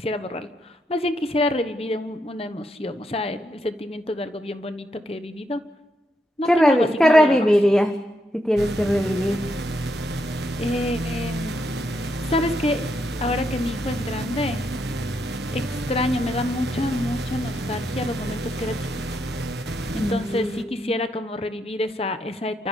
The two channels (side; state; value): both; normal; correlation 0.79